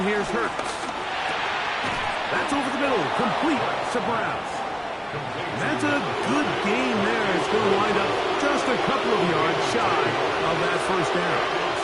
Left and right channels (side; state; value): both; identical; correlation 1.00